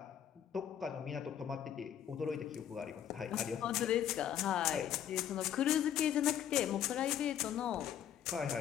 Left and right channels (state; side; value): quieter; right; 9.9 dB